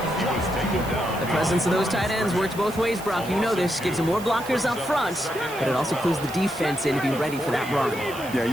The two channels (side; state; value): right; noise; hiss, 16 dB below the sound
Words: He was taken down. The presence of those tight ends works both ways, Brock. You know this. Gives them more blockers up front, but it also clues the defense in to be ready for that run. Yeah,